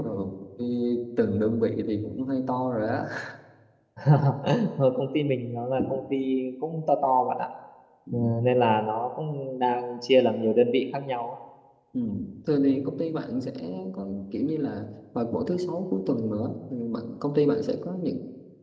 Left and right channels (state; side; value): identical; both; correlation 1.00